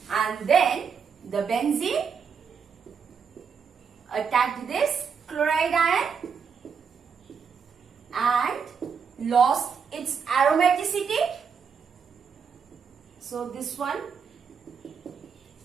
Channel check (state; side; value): quieter; left; 6.4 dB